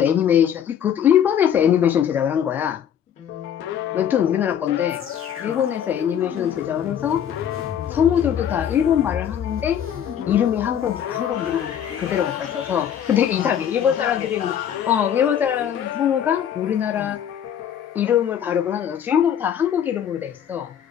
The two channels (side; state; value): right; quieter; 9.3 dB